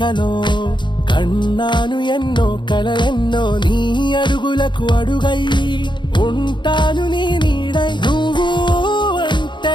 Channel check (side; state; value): right; late; 0.23 ms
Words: కన్నాను ఎన్నో కలలెన్నో, నీ అడుగులకు అడుగై ఉంటాను నీ నీడై. నువ్వు